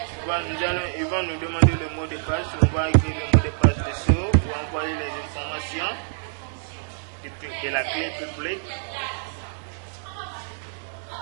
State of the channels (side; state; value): left; silent; digital silence